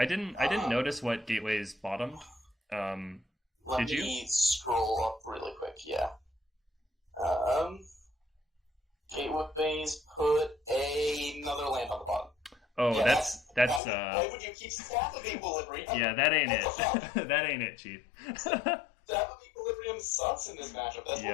didn't notice what Gateway's bottom. Let me scroll up really quick. Yeah. Gateways put another land on the bottom. Oh, yeah, that's why would you keep Staff of Equilibrium? Yeah, that ain't it. That ain't it, Chief. Staff of Equilibrium sucks in this matchup. That's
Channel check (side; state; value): right; drops out; at 13.8 s